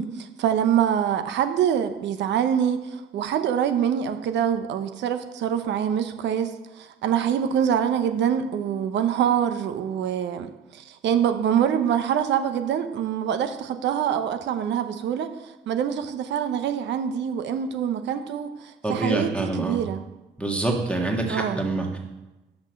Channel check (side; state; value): left; quieter; 7.7 dB